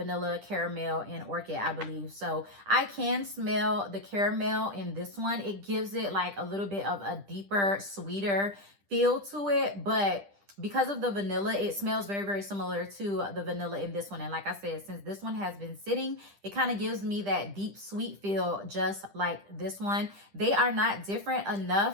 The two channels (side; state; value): left; late; 10 ms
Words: caramel, and orchid, I believe. So I can smell the caramel in this one. It gives it like a little bit of a deeper, sweeter feel to it. But because of the vanilla, it smells very, very similar to the vanilla in this one. And like I said, since this one has been sitting, it kind of gives me that deep sweet feel just like this one. They are not different